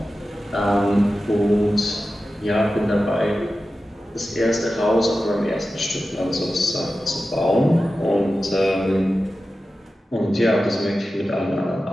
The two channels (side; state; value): both; normal; correlation 0.93